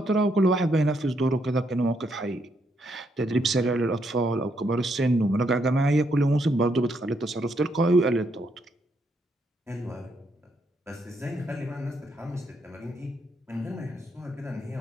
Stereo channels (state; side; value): normal; both; correlation 0.76